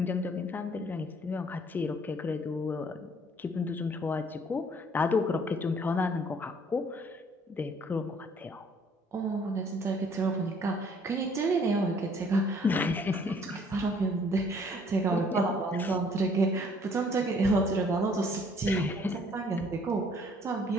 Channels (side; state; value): both; normal; correlation 0.60